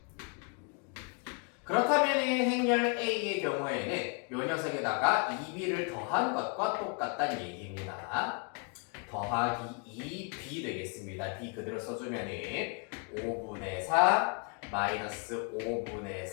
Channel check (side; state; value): right; quieter; 37.0 dB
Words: 그렇다면 행렬 A의 경우에는 요 녀석에다가 2b를 더한 것과 똑같다는 얘기입니다. 더하기 2b 되겠습니다. b 그대로 써주면은 5분의 4 마이너스 5분의